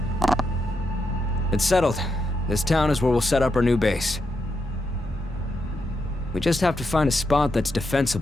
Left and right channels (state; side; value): normal; both; correlation 0.83